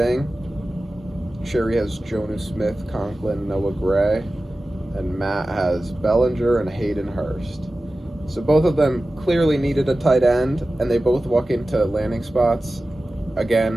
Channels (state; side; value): normal; both; correlation 0.95